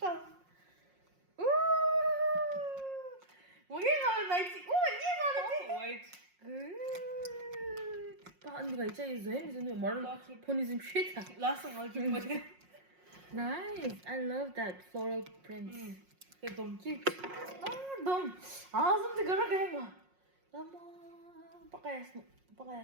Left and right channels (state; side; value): late; left; 5.5 ms